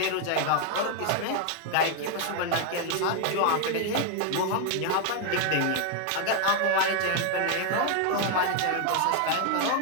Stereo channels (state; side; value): different; both; correlation 0.00